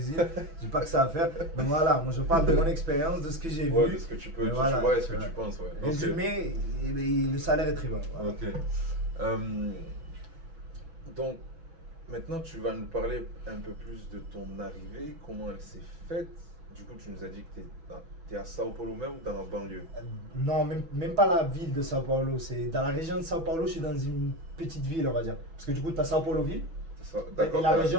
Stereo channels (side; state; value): left; late; 6.1 ms